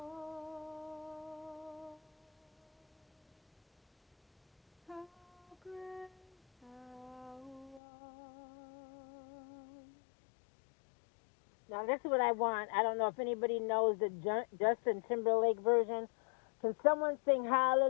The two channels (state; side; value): drops out; right; at 7.8 s